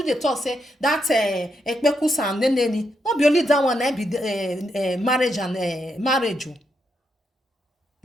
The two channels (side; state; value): both; normal; correlation 0.81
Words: they talk say that ekpekusa and neneni not be only that one be marriage and marriage.